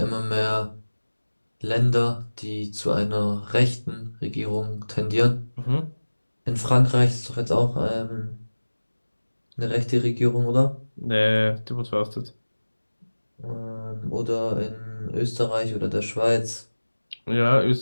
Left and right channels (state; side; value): inverted; both; correlation -1.00